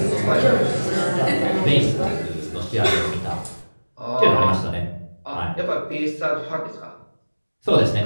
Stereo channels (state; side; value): inverted; both; correlation -1.00